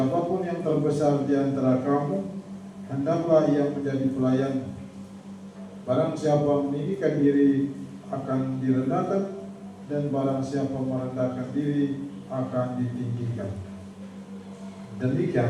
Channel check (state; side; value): identical; both; correlation 1.00